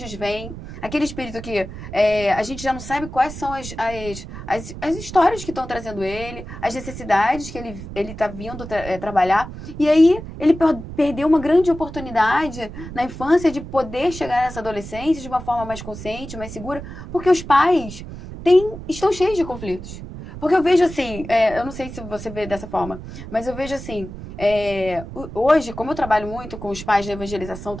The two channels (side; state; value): right; noise; rumble, 11 dB below the sound